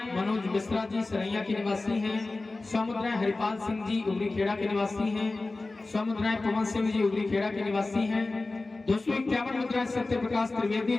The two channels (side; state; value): right; quieter; 3.3 dB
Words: मनोज मिश्रा जी सरैया के निवासी हैं। 100 मुद्राएं हरिपाल सिंह जी उगरी खेड़ा के निवासी हैं। 100 मुद्राएं पवन सिंह जी उगरी खेड़ा के निवासी हैं। 251 मुद्राएं सत्य प्रकाश त्रिवेदी